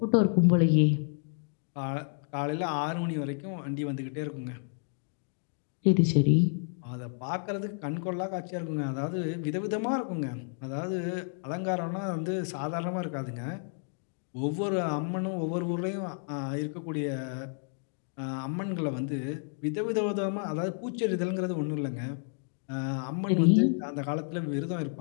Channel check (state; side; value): silent; right; 57 dB below the other